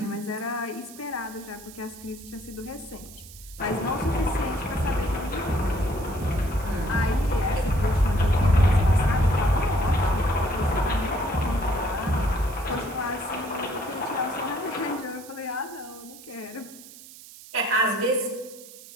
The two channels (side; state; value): right; noise; hiss, 18 dB below the sound